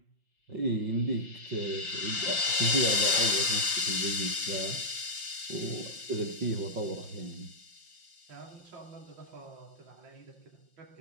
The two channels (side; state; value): left; late; 5.7 ms